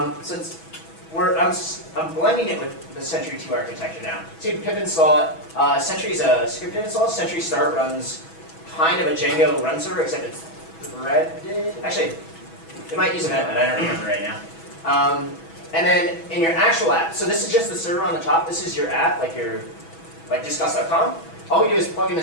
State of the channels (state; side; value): late; right; 6.1 ms